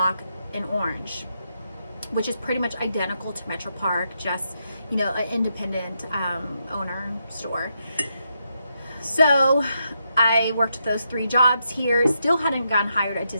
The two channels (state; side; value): inverted; both; correlation -0.82